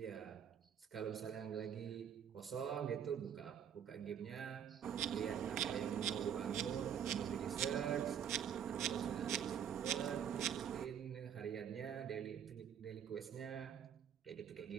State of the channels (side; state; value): left; quieter; 8.7 dB